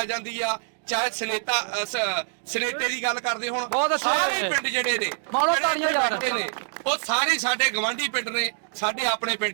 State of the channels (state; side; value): silent; left; digital silence